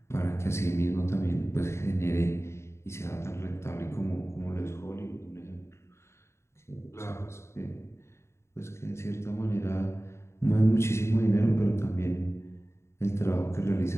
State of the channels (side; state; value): right; late; 0.13 ms